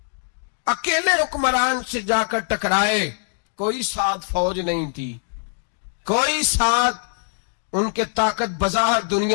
اکیلے حکمران سے جا کر ٹکرائے، کوئی ساتھ فوج نہیں تھی، کوئی ساتھ ان کے طاقت بظاہر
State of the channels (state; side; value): silent; right; digital silence